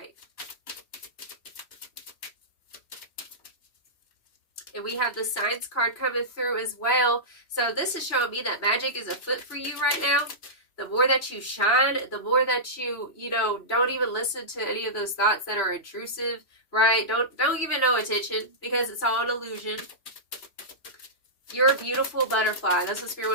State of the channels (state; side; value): late; right; 3.0 ms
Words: And we have the Signs card coming through as well. So this is showing me that magic is afoot for you right now. The more that you shine, the more that you don't even listen to any of those thoughts that are intrusive, right? Don't give it no attention, because it's all an illusion. You're a beautiful butterfly. That's what Spirit